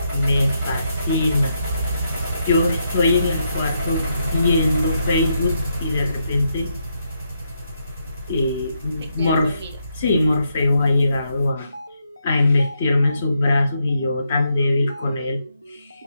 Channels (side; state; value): both; inverted; correlation -0.80